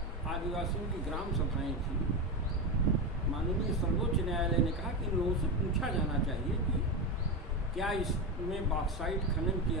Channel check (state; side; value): normal; both; correlation 0.16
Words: आदिवासियों की ग्राम सभाएं थी। माननीय सर्वोच्च न्यायालय ने कहा कि इन लोगों से पूछा जाना चाहिए कि क्या इसमें बॉक्साइट खनन की